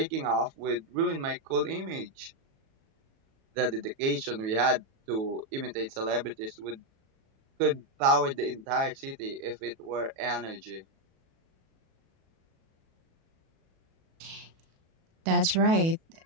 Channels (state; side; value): late; left; 37 ms